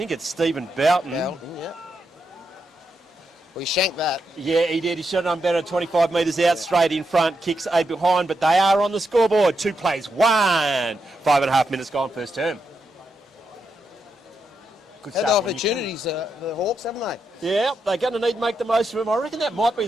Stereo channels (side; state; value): both; normal; correlation 0.83